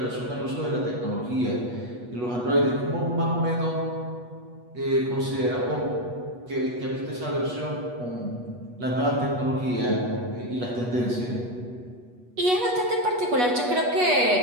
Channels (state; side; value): late; left; 8.2 ms